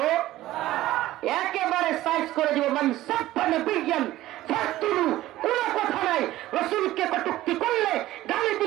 একেবারে সাইজ করে দিব। মান সাব্বা নবিয়ান ফাকতুলু, কোন কথা নাই। রাসূলকে কটূক্তি করলে, গালি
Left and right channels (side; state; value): left; quieter; 15.6 dB